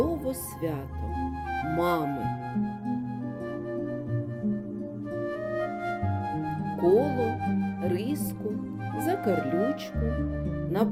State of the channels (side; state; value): both; identical; correlation 1.00